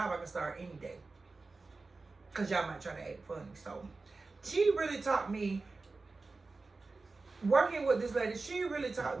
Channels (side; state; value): left; quieter; 3.8 dB